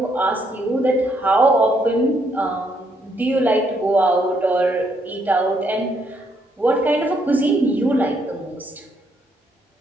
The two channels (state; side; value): normal; both; correlation 0.73